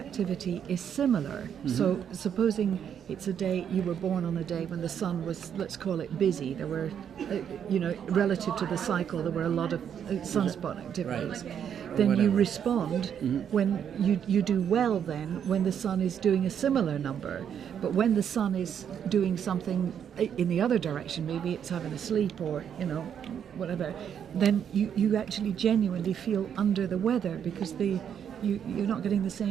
is similar, so supposing it's a day, you were born on a day when the sun was, let's call it busy, there were, relative to the cycle, there were a lot of sunspot activities. Right. Then you whatever. respond when you do well then when the sun is doing a similar number. But when the sun is doing something in the other direction, maybe it's having a sleep or, whatever, then you actually genuinely feel under the weather because you're not getting the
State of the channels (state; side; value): quieter; left; 8.5 dB